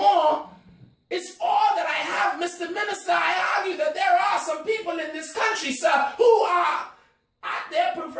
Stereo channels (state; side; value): identical; both; correlation 1.00